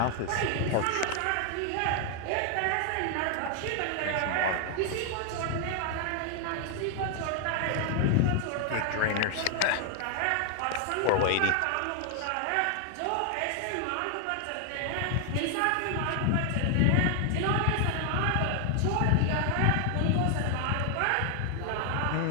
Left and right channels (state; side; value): different; both; correlation 0.00